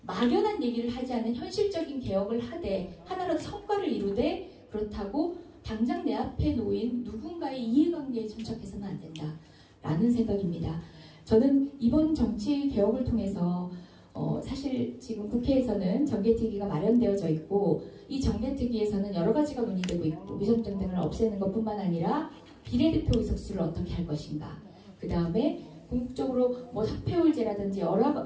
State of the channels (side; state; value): both; identical; correlation 1.00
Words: 막연한 얘기를 하지 않은 현실적인 개혁을 하되 하나라도 성과를 이루되 그렇다고 당장 내 앞에 놓인 누군가의 이해관계에 천착해서는 안 된다라는 생각입니다. 저는 이번 정치 개혁을 통해서 사실 지금 국회에서는 정개특위가 마련되어져 있고 이 정개특위에서는 여러 가지가 논의되고 있고 위선정 등을 없애는 것뿐만 아니라 비례대표 의석수를 어떻게 할 것인가, 그 다음에 궁극적으로 뭐 사표율제라든지 여러